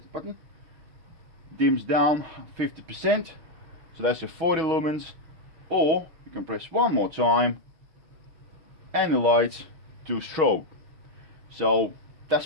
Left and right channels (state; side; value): late; left; 6.3 ms